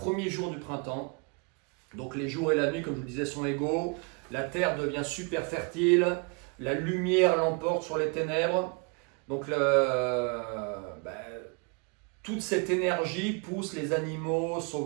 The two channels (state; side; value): quieter; left; 34.0 dB